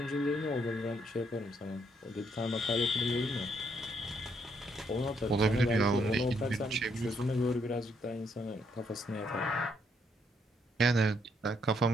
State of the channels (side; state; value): both; normal; correlation 0.73